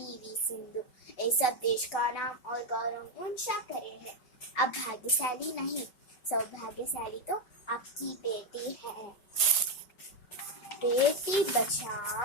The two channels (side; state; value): right; late; 5.3 ms